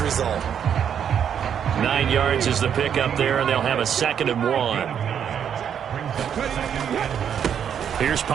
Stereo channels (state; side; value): quieter; left; 8.4 dB